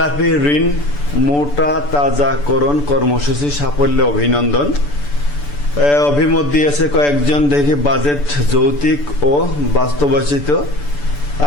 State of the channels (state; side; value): late; right; 6.9 ms